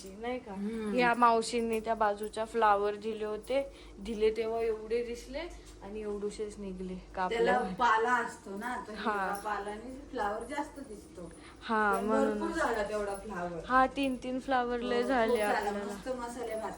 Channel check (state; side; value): identical; both; correlation 1.00